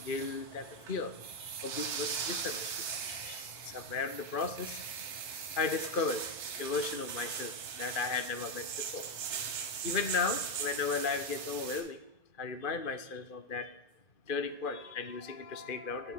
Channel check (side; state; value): right; late; 1.3 ms